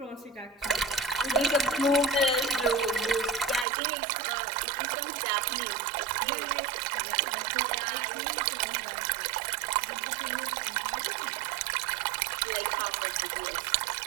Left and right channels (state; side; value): drops out; left; at 3.7 s